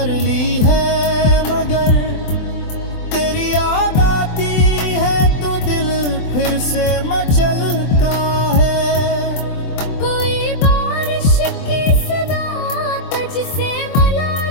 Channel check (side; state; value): right; late; 24 ms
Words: ली है, मगर तेरी याद आती है तो दिल फिर से मचलता है। कोई बारिश की सदा तुझसे मिला